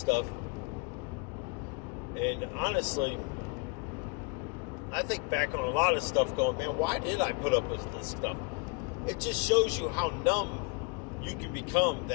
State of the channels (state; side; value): quieter; right; 28.4 dB